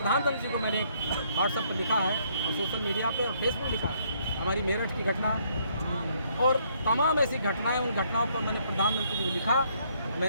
जी को मैंने व्हाट्सएप पर लिखा है और सोशल मीडिया पे और फेसबुक लिखा है हमारी मेरठ की घटना और तमाम ऐसी घटनाएं, उन घटनाओं पर मैंने प्रधानमंत्री जी को लिखा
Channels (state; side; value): inverted; both; correlation -0.68